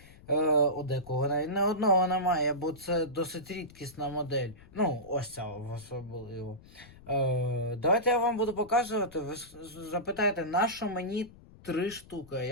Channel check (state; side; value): noise; left; rumble, 22 dB below the sound